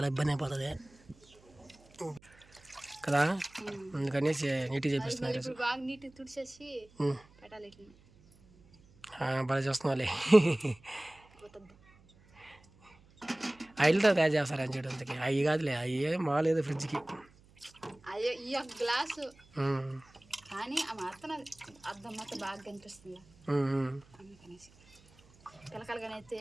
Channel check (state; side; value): noise; right; hum, 27 dB below the sound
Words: ఇబ్బంది అయిపోతుంది కదా. అందుకని నీట్గా చేపిస్తున్నారు ఈరోజు. బాగా చూస్తున్నావాలి. ఆయిల్తో తయారు చేస్తారని చేయడానికి అవి కాదులే, అవి మాలేదు ఫ్రిడ్జ్కి. గ్లాసు కానీ ఆ మాత్రం అర్థం మాత్రం బాగా కనిపిస్తుంది అందుకనేసి పిలకలుగానైతే